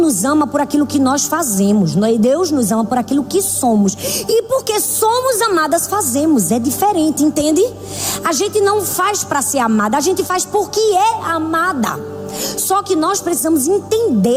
ama por aquilo que nós fazemos, Deus nos ama por aquilo que somos. E porque somos amadas, fazemos. É diferente, entende? A gente não faz para ser amada, a gente faz porque é amada. Só que nós precisamos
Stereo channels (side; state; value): both; identical; correlation 1.00